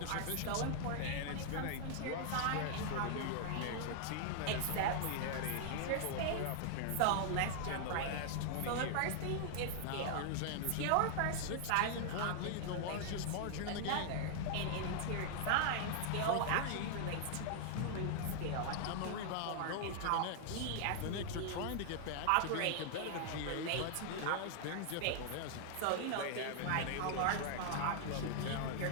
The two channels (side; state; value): both; different; correlation -0.01